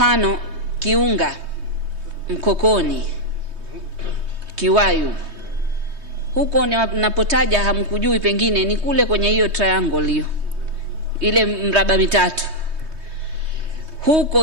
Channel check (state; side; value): late; left; 3.2 ms